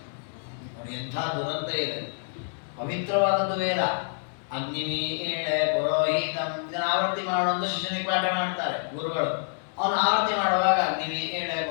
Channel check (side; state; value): right; silent; digital silence